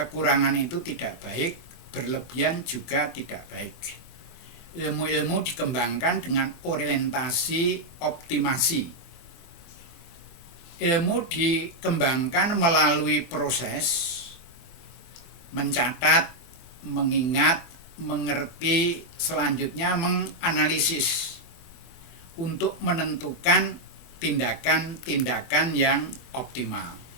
itu tidak baik, berlebihan juga tidak baik. Ilmu-ilmu dikembangkan dengan orientasi optimasi. Ilmu dikembangkan melalui proses mencatat, mengingat, mengerti, selanjutnya menganalisis untuk menentukan tindakan-tindakan yang optimal.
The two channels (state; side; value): late; right; 24 ms